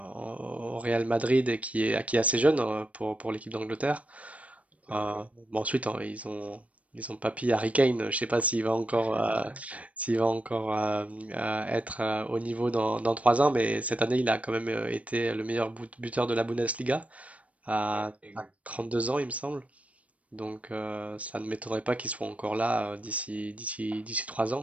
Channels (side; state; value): left; late; 0.066 ms